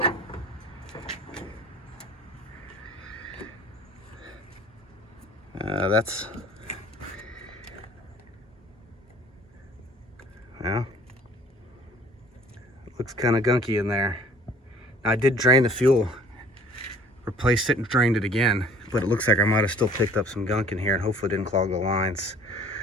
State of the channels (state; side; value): normal; both; correlation 0.52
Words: That's, well, looks kind of gunky in there. I did drain the fuel, replaced it and drained it again, but it looks like I might have still picked up some gunk in here and hopefully didn't clog the lines.